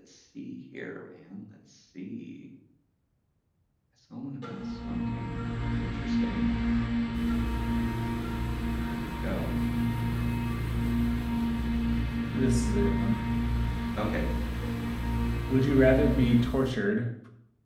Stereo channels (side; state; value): both; identical; correlation 1.00